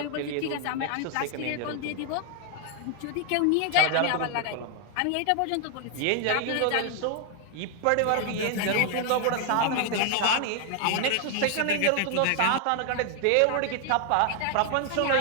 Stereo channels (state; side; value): different; both; correlation 0.00